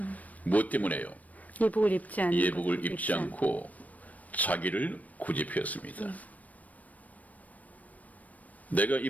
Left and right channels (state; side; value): late; right; 0.072 ms